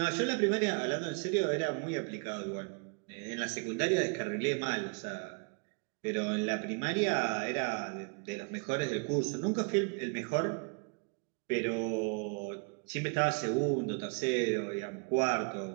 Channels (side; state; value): left; quieter; 38.0 dB